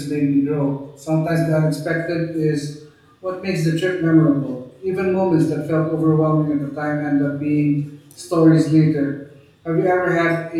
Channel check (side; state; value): both; identical; correlation 1.00